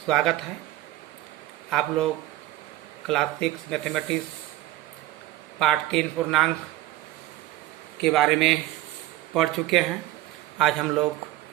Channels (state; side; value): quieter; left; 16.0 dB